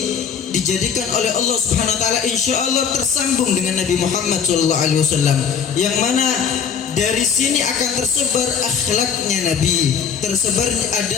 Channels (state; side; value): quieter; right; 7.0 dB